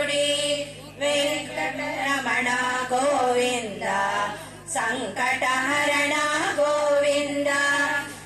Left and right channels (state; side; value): identical; both; correlation 1.00